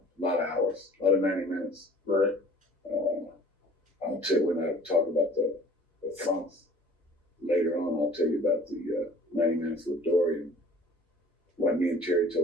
lot of hours, a lot of 90 minutes. Right. I'll tell you when I talk about the funks later on. I'll tell you about the 90 minutes with Dory and what me and Terry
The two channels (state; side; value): normal; both; correlation 0.49